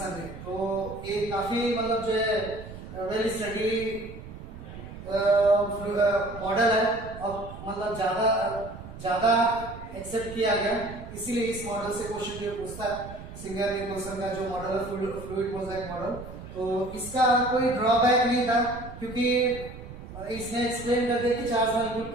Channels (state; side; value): noise; right; rumble, 13 dB below the sound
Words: ने। तो ये काफी मतलब जो है वेल स्टडी मॉडल है, और मतलब ज्यादा एक्सेप्ट किया गया, इसीलिए इस मॉडल से क्वेश्चन जो पूछता है सिंगर निकोलसन का जो मॉडल है फ्लूइड मोजाइक मॉडल, तो इसका कोई ड्रॉबैक नहीं था, क्योंकि इसने एक्सप्लेन कर दिया कि चार्ज मॉलिक्यूल